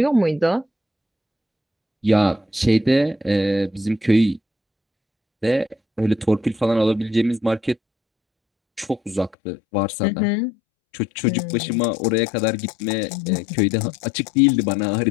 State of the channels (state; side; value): drops out; right; at 9.3 s